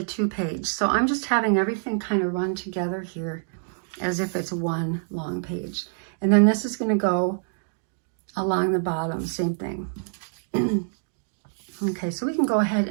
2-page. So I'm just having everything kind of run together here as if it's one long page. And then this is going to go along the bottom, same thing. Okay, so we can go ahead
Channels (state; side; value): silent; left; digital silence